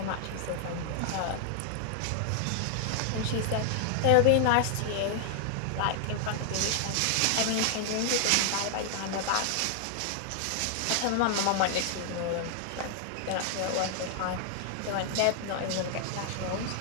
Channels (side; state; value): both; different; correlation 0.00